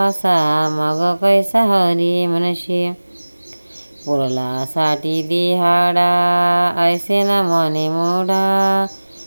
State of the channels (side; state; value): both; inverted; correlation -1.00